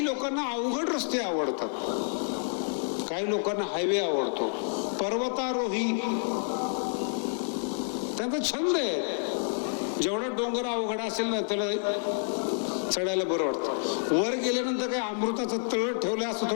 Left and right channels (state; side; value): silent; right; 59 dB below the other